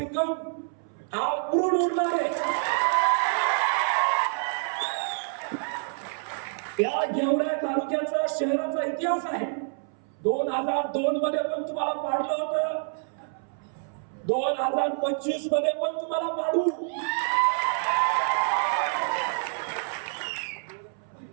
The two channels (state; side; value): silent; left; 60 dB below the other